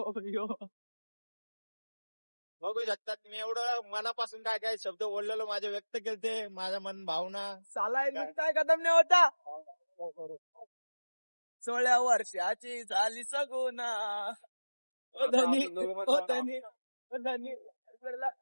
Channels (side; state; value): both; inverted; correlation -1.00